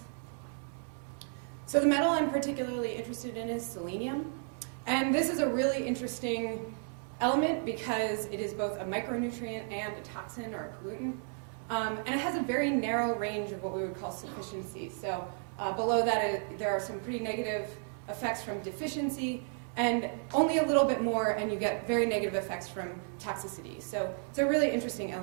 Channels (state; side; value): silent; left; 56 dB below the other